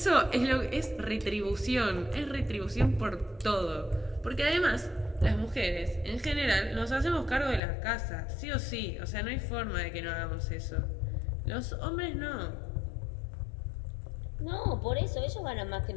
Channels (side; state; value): right; drops out; at 7.6 s